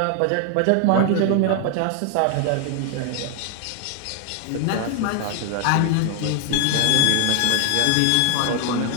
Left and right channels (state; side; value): different; both; correlation 0.00